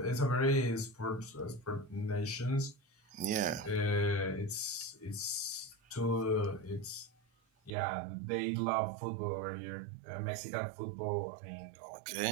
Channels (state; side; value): drops out; left; at 7.8 s